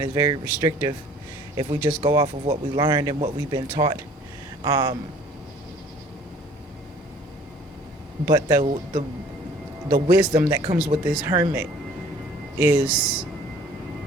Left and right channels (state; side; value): normal; both; correlation 0.53